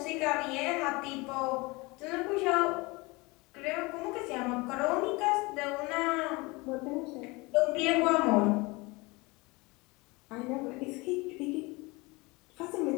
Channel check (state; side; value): quieter; right; 24.7 dB